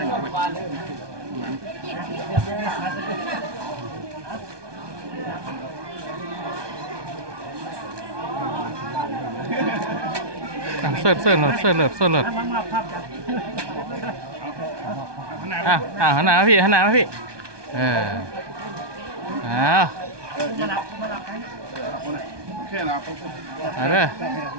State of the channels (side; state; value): left; late; 1.2 ms